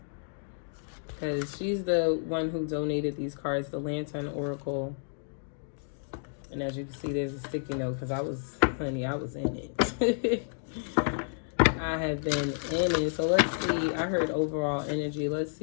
Because she's the one who donated these cards, the Lantern Oracle. And as you can see, there's a sticky note because I was in it. I have been in it. So let's see. I heard overall energy. Let's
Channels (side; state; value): right; silent; digital silence